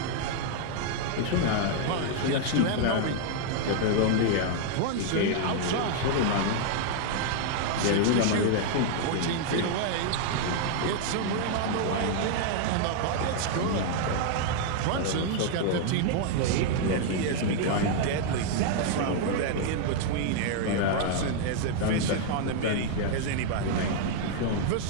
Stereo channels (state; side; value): different; both; correlation 0.00